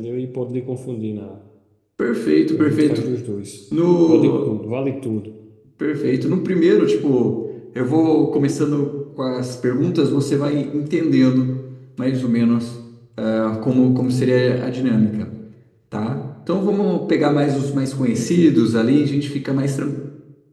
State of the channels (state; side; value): identical; both; correlation 1.00